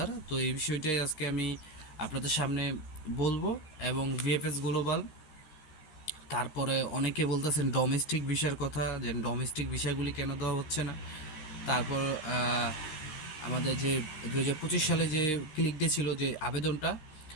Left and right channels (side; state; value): right; late; 13 ms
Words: তো এই বিষয়টাই আজকে আমি আপনাদের সামনে বলবো। এবং ভিএফএস গ্লোবাল, তারপরে অনেকে বলতেছেন ডোমেস্টিক ভিসার কথা, যে ডোমেস্টিক ভিসাগুলি কেন দেওয়া হচ্ছে না। তারপর আমাদের যে 2025 সালে যে ক্লিক ডে ছিল, যে আবেদনটা,